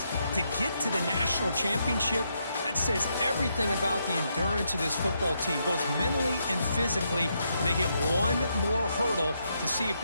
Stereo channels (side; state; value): both; inverted; correlation -0.79